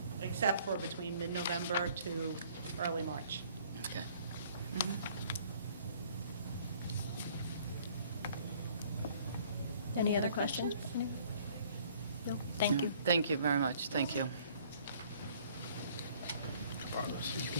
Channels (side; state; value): both; inverted; correlation -0.57